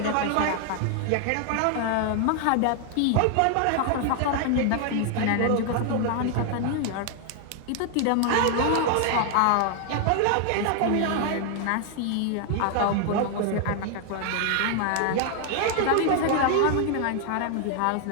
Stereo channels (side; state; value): both; different; correlation 0.00